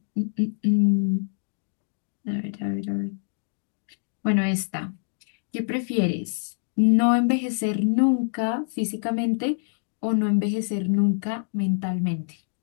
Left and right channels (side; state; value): right; silent; digital silence